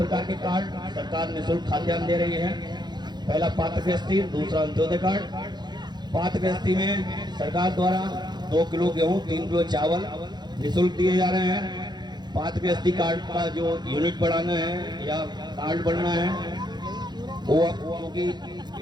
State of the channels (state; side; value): late; left; 0.21 ms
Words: के कार्ड सरकार निःशुल्क खाद्यान्न दे रही है। पहला पात्र गृहस्थी, दूसरा अंत्योदय कार्ड। पात्र गृहस्थी में सरकार द्वारा 2 किलो गेहूँ, 3 किलो चावल निःशुल्क दिए जा रहे हैं। पात्र गृहस्थी कार्ड का जो यूनिट बढ़ाना है या कार्ड बढ़ना है वो क्योंकि